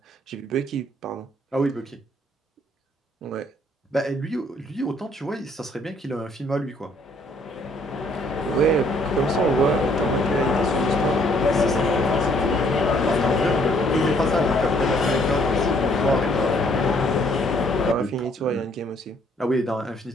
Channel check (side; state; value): both; normal; correlation 0.64